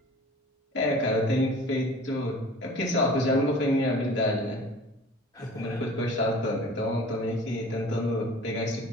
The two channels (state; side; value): normal; both; correlation 0.44